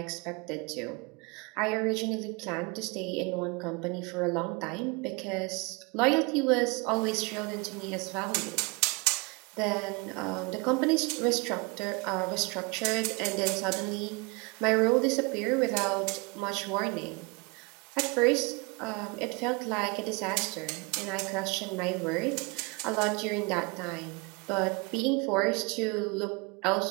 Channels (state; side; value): quieter; left; 29.0 dB